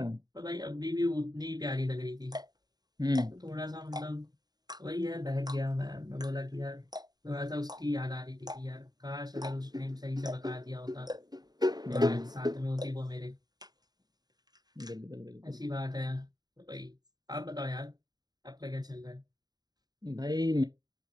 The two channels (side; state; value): left; late; 0.19 ms